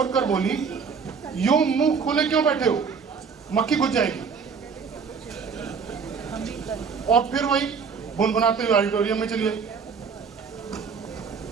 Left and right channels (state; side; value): quieter; left; 5.8 dB